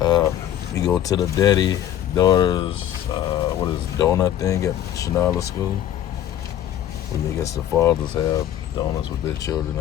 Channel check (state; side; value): quieter; right; 11.3 dB